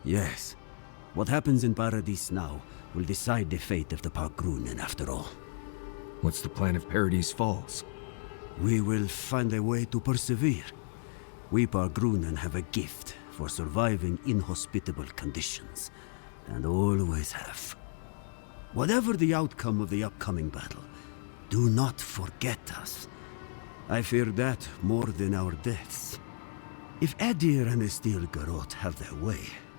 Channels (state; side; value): silent; right; 56 dB below the other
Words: Yes, what happens in Paradis now will decide the fate of the Parkrunen after all. What's the plan if Paradis falls? We will find a way to persevere. We Bargrunen have a gift for surviving inhospitable conditions, and always have. Whatever the outcome of the upcoming battle, do not forget us. I fear that more than our deaths. If Adir and the Steel Garrote have their way,